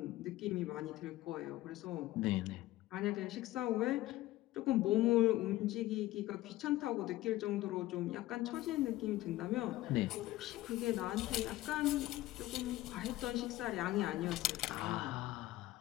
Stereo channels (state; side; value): quieter; right; 16.4 dB